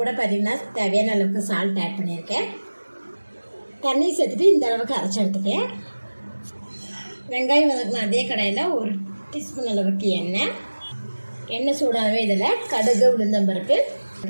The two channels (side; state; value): both; inverted; correlation -1.00